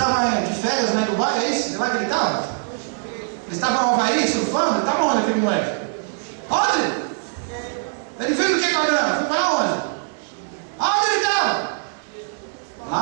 de férias na Dubai, é isso? De lá que ele estava? Ele estava no Havaí, surfando? Ele estava onde aquele moleque? Onde? Ele fez o que com a grana? Foi para onde? Onde ele estava?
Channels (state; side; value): silent; left; digital silence